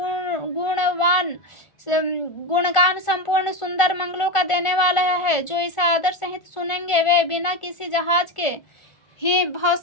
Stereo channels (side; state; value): right; late; 1.4 ms